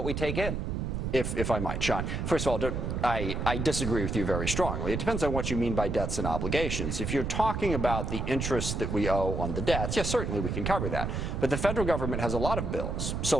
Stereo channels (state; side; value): noise; right; rumble, 2 dB below the sound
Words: we take in. If I might, Sean. First of all, I disagree with you very strongly. It depends on what you mean by debts and obligations. If you're talking about the interest that we owe on the debts, yes, certainly we can cover that. But the federal government has a lot of bills: